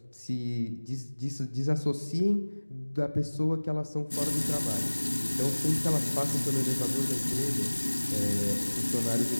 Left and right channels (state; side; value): inverted; both; correlation -1.00